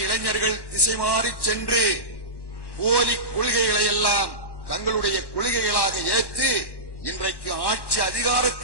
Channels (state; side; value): late; right; 1.1 ms